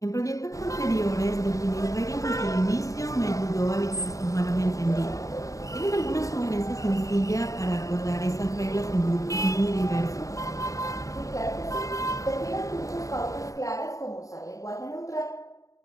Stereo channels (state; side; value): late; right; 0.16 ms